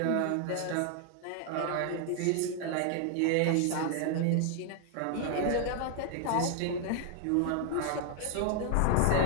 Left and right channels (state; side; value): different; both; correlation 0.00